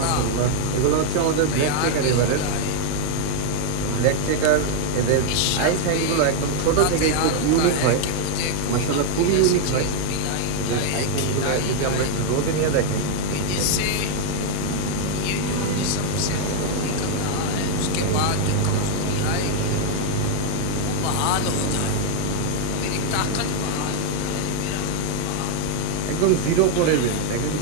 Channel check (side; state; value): both; different; correlation 0.01